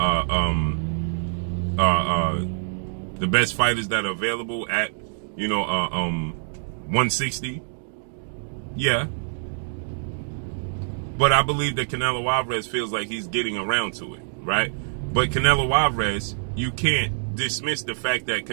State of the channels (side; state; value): left; silent; digital silence